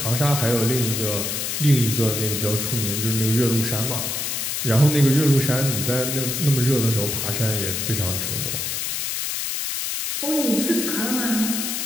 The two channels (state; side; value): noise; left; hiss, 2 dB below the sound